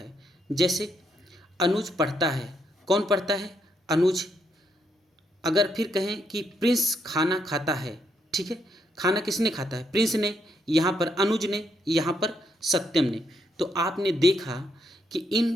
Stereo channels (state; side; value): normal; both; correlation 0.76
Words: जैसे अनुज पढ़ता है, कौन पढ़ता है, अनुज। अगर फिर कहें कि प्रिंस खाना खाता है, ठीक है, खाना किसने खाता है, प्रिंस ने, यहाँ पर अनुज ने, यहाँ पर सत्यम ने। तो आपने देखा कि